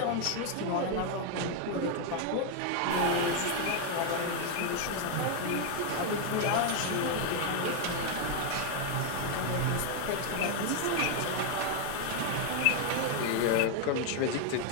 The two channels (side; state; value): both; different; correlation 0.00